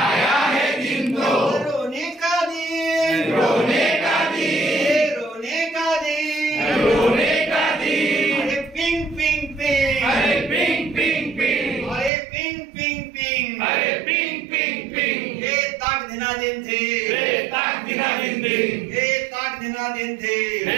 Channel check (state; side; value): drops out; left; at 12.1 s